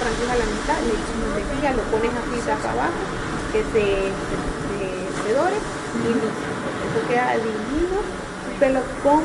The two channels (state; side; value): identical; both; correlation 1.00